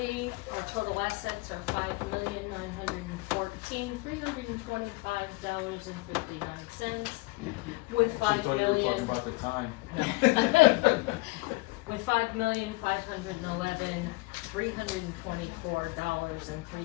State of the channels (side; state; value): right; quieter; 24.3 dB